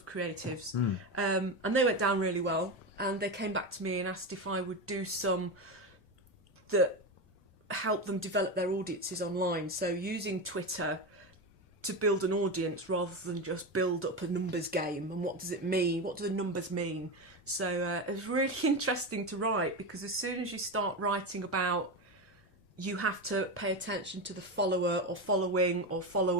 creatives. And they went down really well. And they came back to me and asked if I would do some that help them develop their audiences online. So using Twitter to build an audience rather than just build up a numbers game. And what does it mean? What do the numbers mean? So it was really interesting to write, because as soon as you start writing about, you have to pay attention to the follower or following or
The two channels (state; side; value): normal; both; correlation 0.18